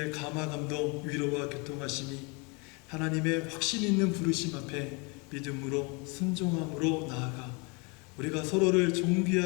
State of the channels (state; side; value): quieter; right; 30.9 dB